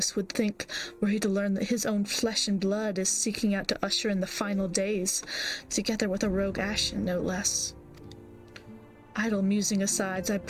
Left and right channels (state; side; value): identical; both; correlation 1.00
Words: would think were he to learn that his own flesh and blood is seeking out to usher in the final days, together with a rogue Ashen, no less. Idle musing aside, I